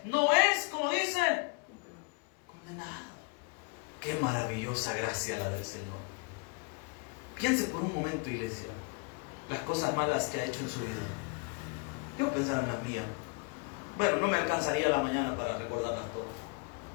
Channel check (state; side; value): quieter; right; 32.7 dB